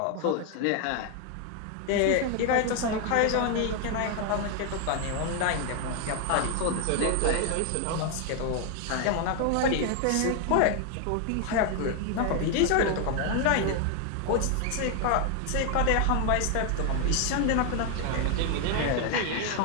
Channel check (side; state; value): both; different; correlation 0.00